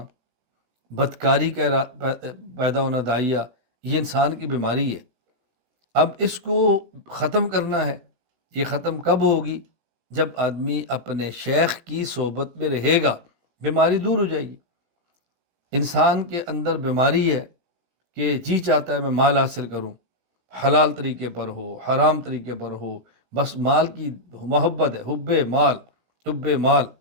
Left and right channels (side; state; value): left; late; 17 ms